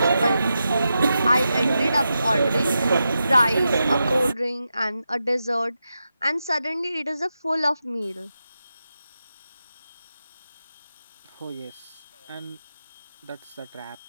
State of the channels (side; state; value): both; inverted; correlation -0.89